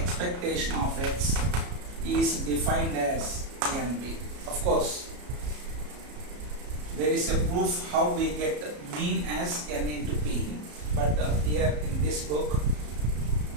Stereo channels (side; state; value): left; late; 34 ms